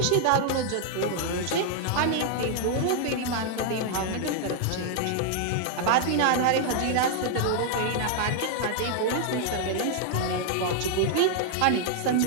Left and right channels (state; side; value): different; both; correlation 0.00